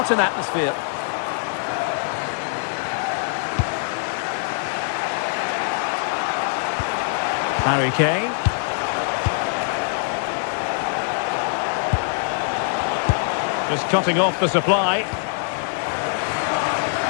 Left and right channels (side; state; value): right; silent; digital silence